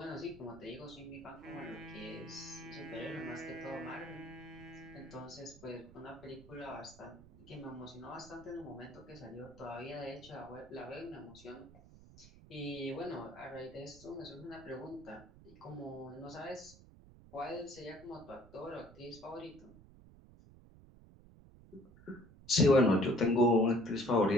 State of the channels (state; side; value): noise; right; rumble, 21 dB below the sound